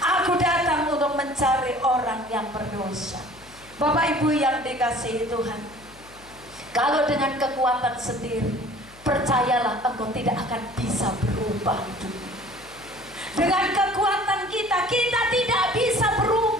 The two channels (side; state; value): left; noise; hum, 24 dB below the sound